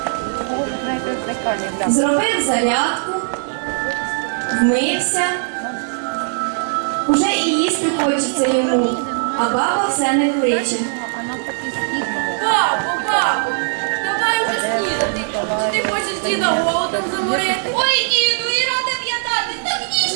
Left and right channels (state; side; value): silent; left; digital silence